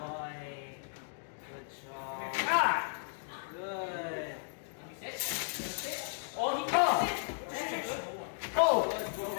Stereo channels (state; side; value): silent; right; digital silence